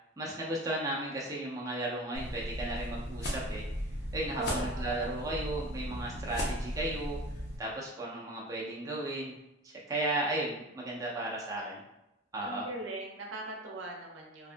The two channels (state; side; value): normal; both; correlation 0.36